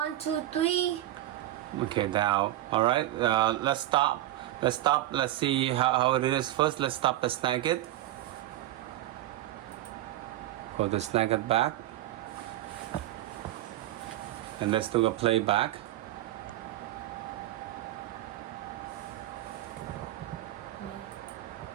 2, 3. Okay. Now. All right. Let's stop. Let's see how it is first. Let's stop the Snagit. Go to Snagit back. And let's do a playback.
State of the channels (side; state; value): left; quieter; 14.4 dB